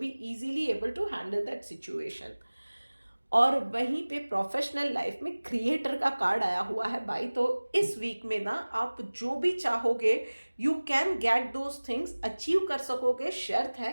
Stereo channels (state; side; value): inverted; both; correlation -1.00